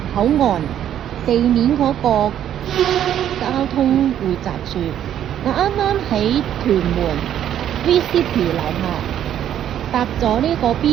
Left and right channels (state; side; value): quieter; left; 10.5 dB